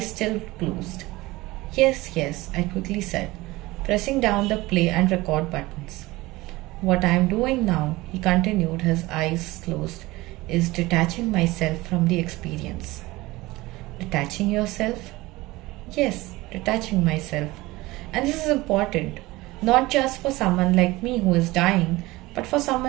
still closed. Yes, I quickly said, pressing down the play and record buttons. What I am doing now, he continued, his eyes closed, is detaching myself from the experience. Detaching yourself? Yes, detaching myself. And this is important. Not just for someone like me who is dying, but for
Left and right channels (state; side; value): quieter; left; 20.1 dB